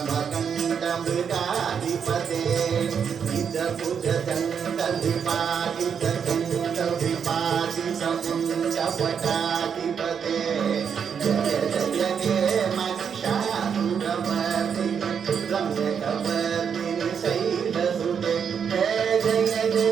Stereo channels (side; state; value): left; quieter; 7.2 dB